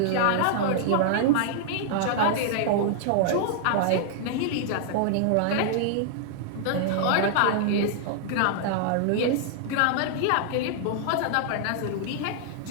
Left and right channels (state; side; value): different; both; correlation -0.01